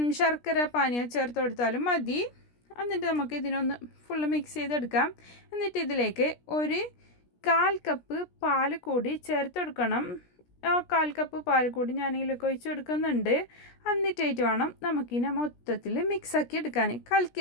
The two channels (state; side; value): late; right; 17 ms